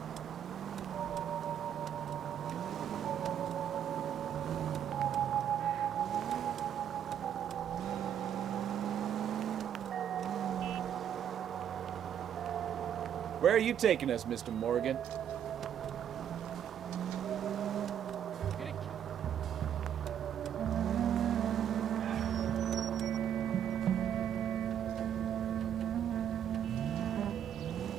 Where are you taking us, Mr. Morgan?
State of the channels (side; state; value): left; quieter; 9.4 dB